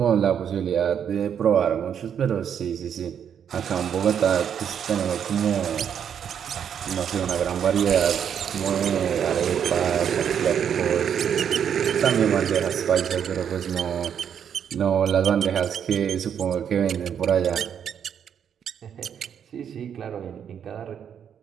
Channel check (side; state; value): left; quieter; 8.4 dB